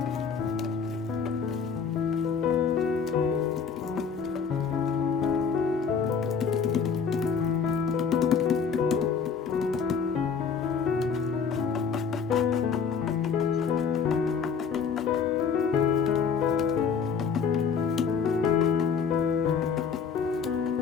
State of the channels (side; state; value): right; quieter; 6.2 dB